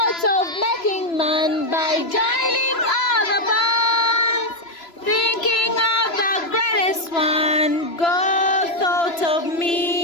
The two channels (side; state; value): right; late; 3.0 ms